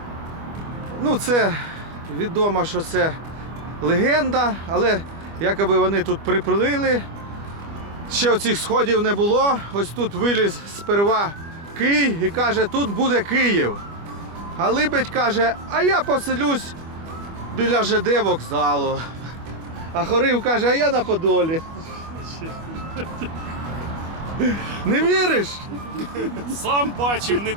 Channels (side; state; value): left; late; 25 ms